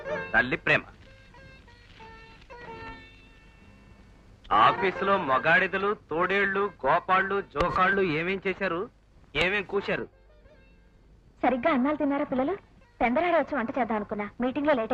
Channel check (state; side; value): identical; both; correlation 1.00